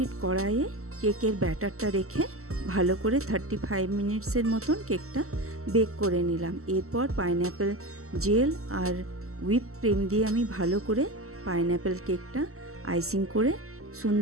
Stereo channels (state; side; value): late; left; 0.63 ms